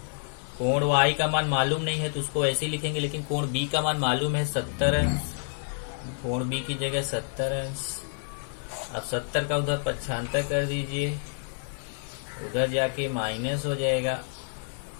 कोण y का मान मालूम नहीं है तो उसको ऐसे ही लिखेंगे, लेकिन कोण b का मान मालूम है 70 अंश, कोण b की जगह 70 अंश। अब 70 का उधर 75 कर दीजिए, उधर जाके माइनस हो जाएगा,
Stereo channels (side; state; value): right; silent; digital silence